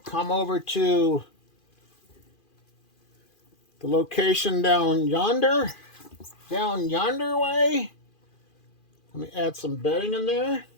come over to the location down yonder way. Let me add some bedding in there.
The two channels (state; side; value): late; right; 2.4 ms